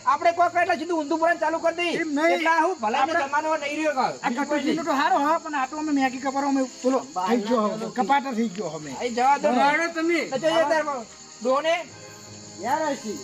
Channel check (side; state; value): both; identical; correlation 1.00